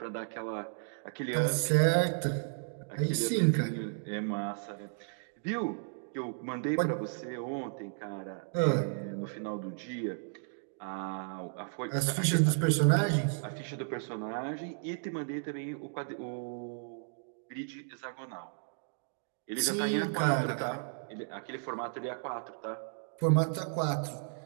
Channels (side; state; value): left; silent; digital silence